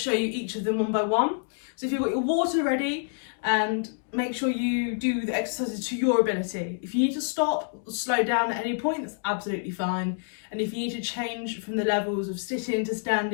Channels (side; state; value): right; silent; digital silence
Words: you each of them one by one. So if you've got your water ready, and make sure you do the exercises to your ability. If you need to stop or slow down at any point, that's absolutely fine. And if you need to change from the levels of sitting to